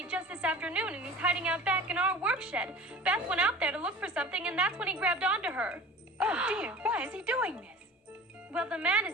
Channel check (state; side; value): normal; both; correlation 0.39